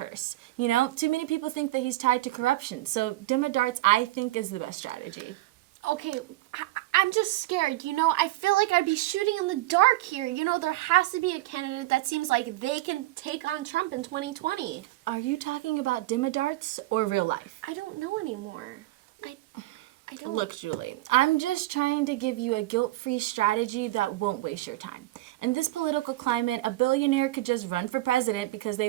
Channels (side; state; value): left; quieter; 17.6 dB